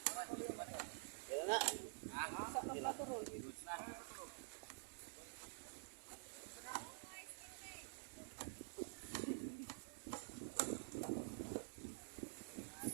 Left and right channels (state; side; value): silent; left; digital silence